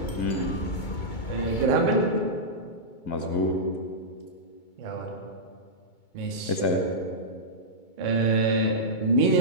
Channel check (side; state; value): right; late; 2.2 ms